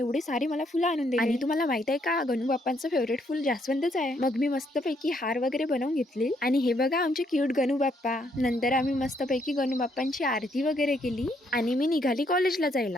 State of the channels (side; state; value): both; normal; correlation 0.72